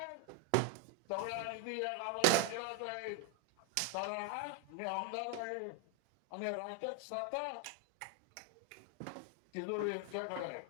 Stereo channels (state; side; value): different; both; correlation 0.01